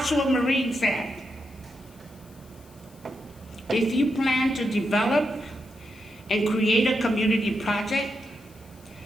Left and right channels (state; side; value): noise; left; hiss, 27 dB below the sound